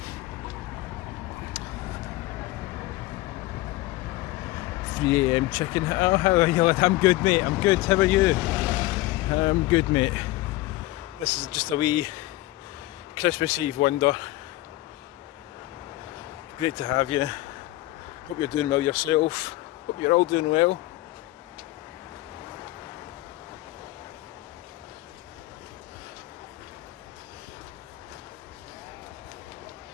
.3 AM chicken. Oh, how are you? I'm good, mate. I'm good. How are you? I'm good, mate. This is just a wee Christmas Eve wonder. Great to have you. Hope you're doing well yourself. Hope you're all doing well.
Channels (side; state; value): right; quieter; 18.1 dB